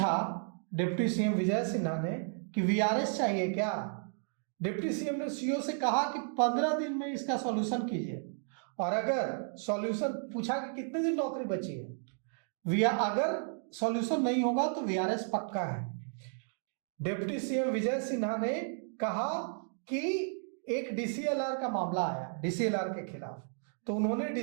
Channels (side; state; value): left; silent; 56 dB below the other